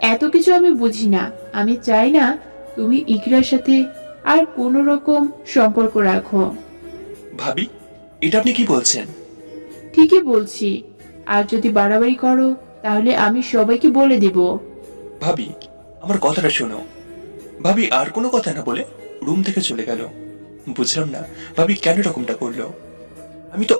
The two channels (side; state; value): both; inverted; correlation -1.00